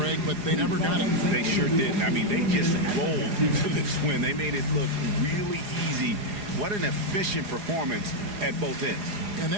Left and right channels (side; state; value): left; late; 4.8 ms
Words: but they never got it. They sure didn't. I mean, they just rolled to this win. They made it look really easy. What an efficient performance at both ends. And